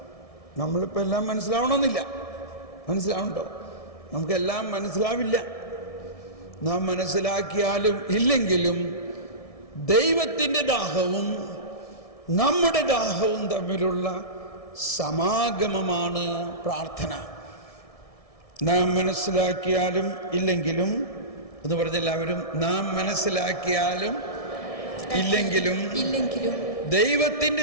നമ്മളിപ്പോൾ എല്ലാം മനസ്സിലാവണമെന്നില്ല. മനസ്സിലാവുന്നുണ്ടോ? നമുക്കെല്ലാം മനസ്സിലാവില്ല. നാം മനസ്സിലാക്കിയാലും ഇല്ലെങ്കിലും ദൈവത്തിൻ്റെ ദാഹവും നമ്മുടെ ദാഹവും തമ്മിലുള്ള സമാഗമമാണ് പ്രാർത്ഥന. നാം മനസ്സിലാക്കിയാലും ഇല്ലെങ്കിലും എന്ന് പറഞ്ഞെല്ലാവരും, നാം മനസ്സിലാക്കിയാലും ഇല്ലെങ്കിലും ദൈവത്തിൻ്റെ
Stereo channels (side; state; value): right; late; 1.6 ms